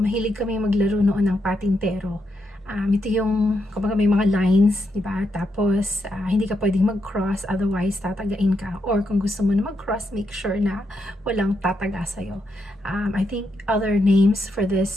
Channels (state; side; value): normal; both; correlation 0.81